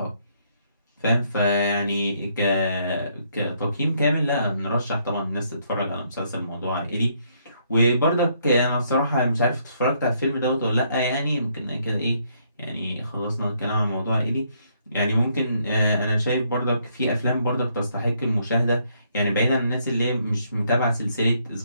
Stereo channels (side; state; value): both; inverted; correlation -0.71